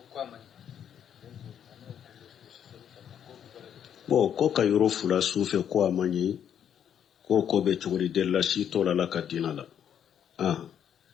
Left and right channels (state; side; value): quieter; right; 9.1 dB